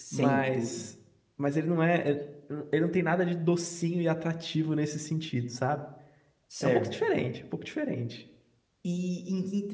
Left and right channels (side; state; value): both; identical; correlation 1.00